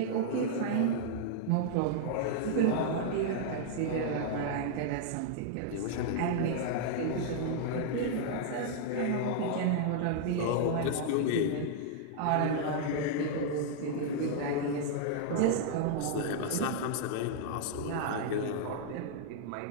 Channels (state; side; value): different; both; correlation -0.01